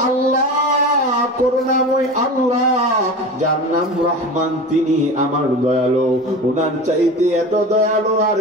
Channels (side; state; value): both; normal; correlation 0.31